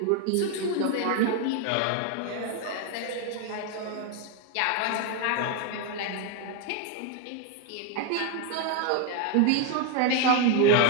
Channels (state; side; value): different; both; correlation 0.01